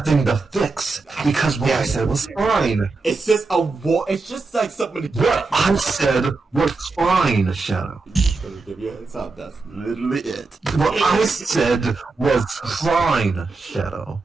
to fix because what I said was fine. It's just it's just like something to get. What I said was fine, Shadow. Just gonna give you a heads up. That's literally it. What I said was fine, Shadow.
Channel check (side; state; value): left; quieter; 3.9 dB